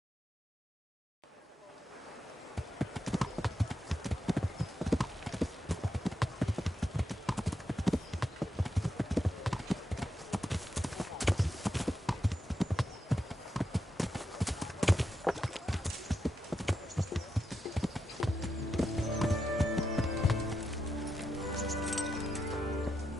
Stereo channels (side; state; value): both; normal; correlation 0.85